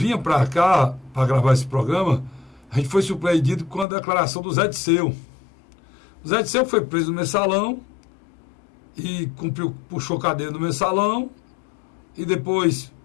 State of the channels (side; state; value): right; drops out; at 3.9 s